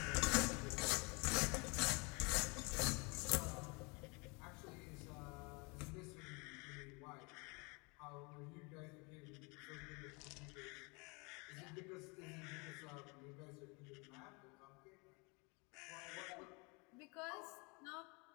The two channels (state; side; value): quieter; right; 29.9 dB